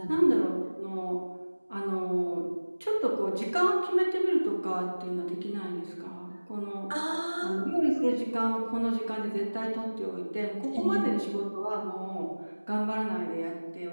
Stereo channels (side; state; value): both; inverted; correlation -1.00